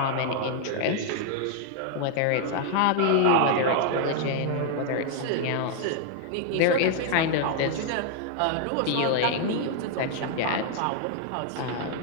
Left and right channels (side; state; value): both; different; correlation 0.00